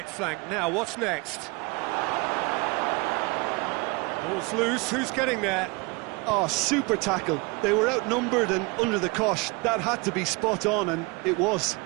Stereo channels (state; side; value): quieter; left; 26.9 dB